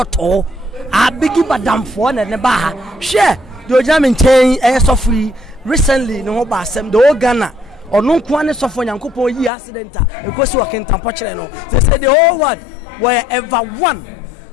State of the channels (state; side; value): drops out; right; at 9.5 s